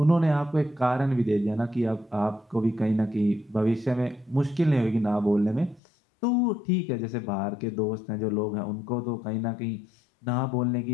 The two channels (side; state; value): right; drops out; at 5.8 s